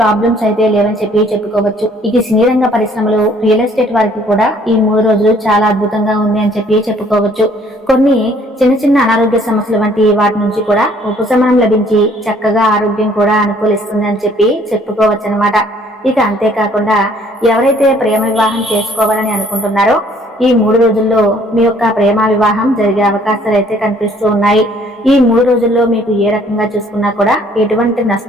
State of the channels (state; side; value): normal; both; correlation 0.60